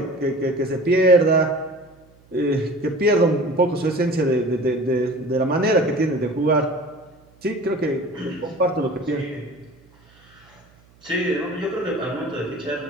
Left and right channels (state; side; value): noise; right; hum, 29 dB below the sound